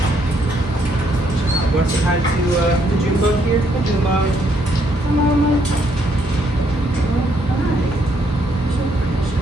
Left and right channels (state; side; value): normal; both; correlation 0.72